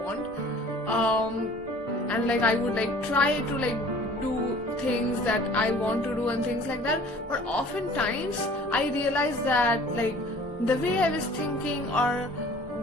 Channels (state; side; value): normal; both; correlation 0.49